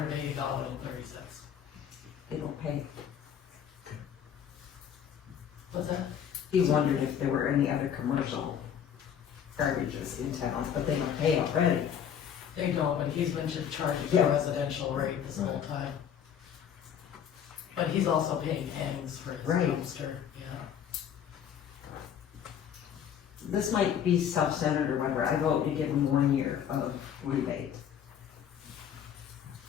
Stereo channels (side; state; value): right; quieter; 8.7 dB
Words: They don't pay. What's that? He wondered if there were any other commercial garbages in town, but they don't pay already. They don't, but he's been charging Yeah. the residential rate this whole time. But he's also paying Egan's for his Right. dumpster, yeah. This might be self-centered or whatever, I vote to give him 1 year of rebate.